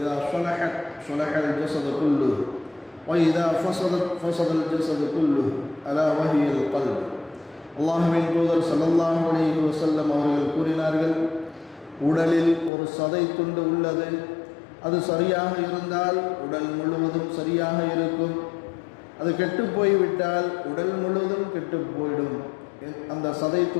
صلحت صلح الجسد كله وإذا فسدت فسد الجسد كله ألا وهي القلب. அல்லாஹ்வின் தூதர் ஸல்லல்லாஹு அலைஹி வஸல்லம் அவர்கள் கூறினார்கள், உடலில் ஒரு சதை துண்டு உள்ளது. அது சரியாக இருந்தால் உடல் முழுவதும் சரியாக இருக்கும். அது கெட்டு போய்விட்டால் உடல் முழுவதும் கெட்டு போய்டும். அந்த சதை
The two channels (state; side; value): drops out; right; at 12.7 s